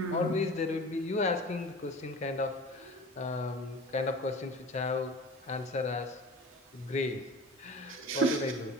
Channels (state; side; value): normal; both; correlation 0.39